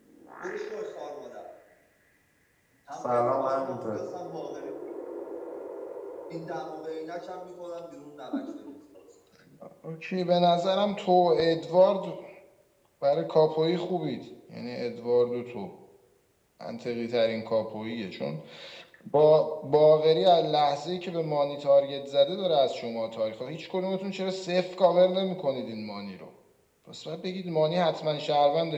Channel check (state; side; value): identical; both; correlation 1.00